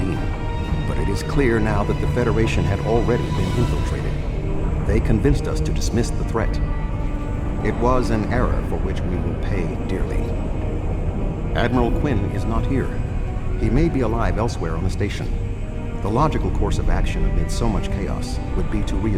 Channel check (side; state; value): both; identical; correlation 1.00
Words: but it is clear now that the Federation had already been infiltrated. They convinced us to dismiss the threat. It was an error for which we will pay dearly. Admiral Quinn is not here. He may be alive elsewhere on the station. The logical course of action amid so much chaos would be to